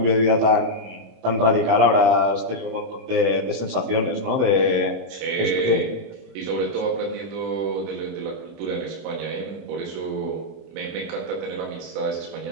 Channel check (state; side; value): late; left; 26 ms